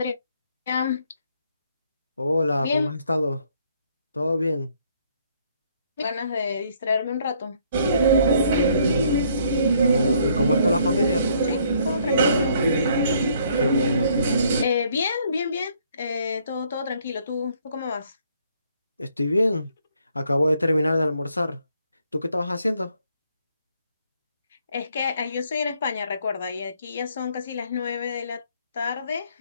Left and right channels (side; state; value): both; inverted; correlation -0.66